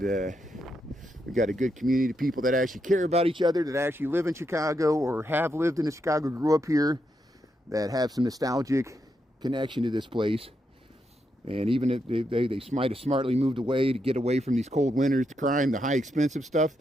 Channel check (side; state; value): both; normal; correlation 0.82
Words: we've got a good community of people that actually care about each other, that actually live in Chicago or have lived in Chicago, grew up here, that have some nostalgic connection to this place. And even if they might have smartly moved away to get away from these cold winters, the crime, the high expensive stuff,